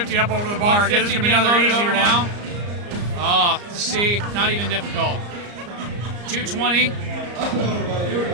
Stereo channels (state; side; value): late; left; 34 ms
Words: up over the bar. 150 being loaded over now. Oh, see, not even difficult. 220.